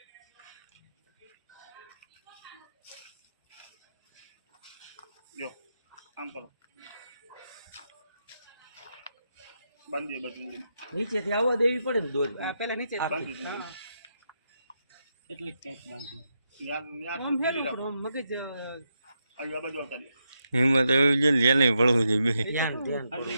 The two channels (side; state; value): both; inverted; correlation -0.84